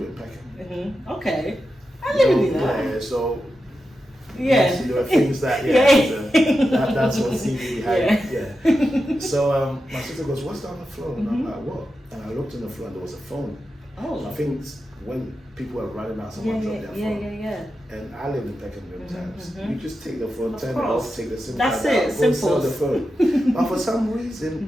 in Peckham. Okay, I live in that. Yeah, so. There were things that that's what CD had. So my sister goes, "What's down the floor?" And I'm like, "What?" And I looked on the floor and there was a phone. Oh. So I think when people are running out, someone drop their phone. Yeah. And I lived in Peckham many times. You just take the phone, turn it off, take the SIM card out, go sell the phone. But for some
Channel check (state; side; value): normal; both; correlation 0.90